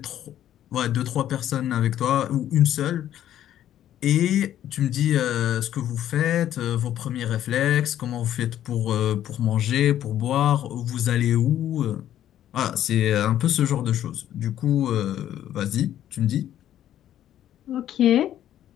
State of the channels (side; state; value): right; quieter; 11.6 dB